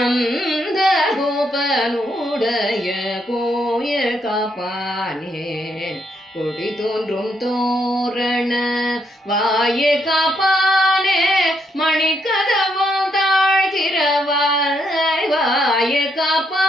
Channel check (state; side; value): normal; both; correlation 0.76